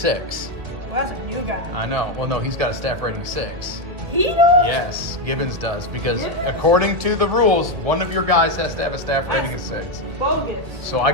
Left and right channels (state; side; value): late; left; 1.9 ms